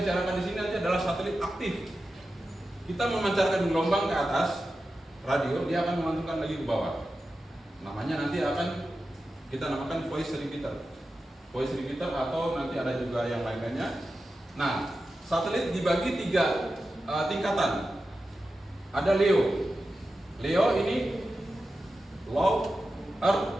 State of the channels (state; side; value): normal; both; correlation 0.92